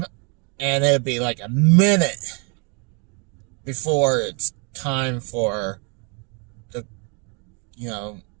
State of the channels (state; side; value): quieter; left; 34.5 dB